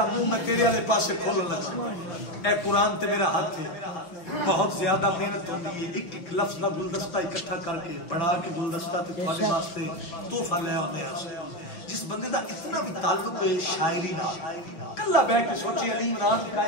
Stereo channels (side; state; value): right; late; 5.9 ms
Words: منہ میں تیرے والے پاسے کھولن لگا اے قرآن تے میرا ہاتھ ہے بہت زیادہ محنت ہوتی ہے ایک ایک لفظ دا گلدستہ اکٹھا کر کے بڑھا کے گلدستہ تے تمہارے واسطے تحفہ لے آنے ہیں جس بندے دا اتنا بھی تعلق ہے شاعری نہ کلا بہ کے سوچے علی عمران